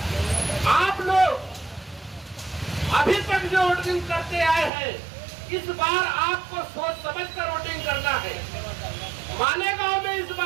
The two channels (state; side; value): drops out; left; at 4.7 s